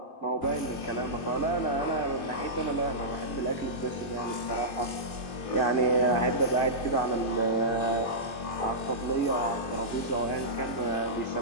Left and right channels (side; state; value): right; late; 3.0 ms